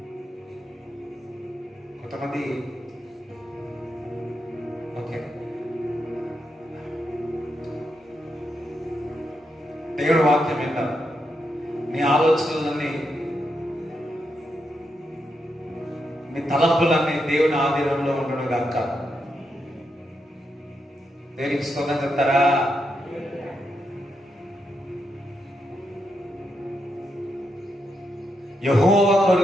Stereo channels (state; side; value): normal; both; correlation 0.83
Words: కొంతమంది ఓకే దేవుడి వాక్యం విన్నారు, నీ ఆలోచనలన్నీ మీ తలంపులన్నీ దేవుని ఆధీనంలో ఉండడం కాక. దేవునికి స్తోత్రం చెప్తారా? యెహోవా